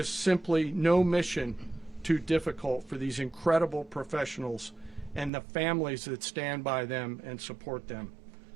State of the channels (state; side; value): drops out; left; at 5.3 s